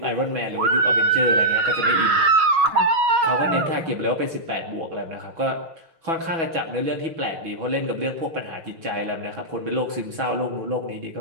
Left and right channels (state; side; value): late; left; 6.1 ms